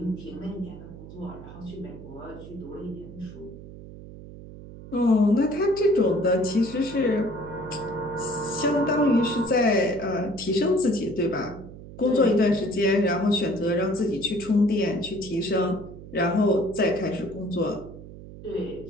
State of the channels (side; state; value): right; noise; hum, 15 dB below the sound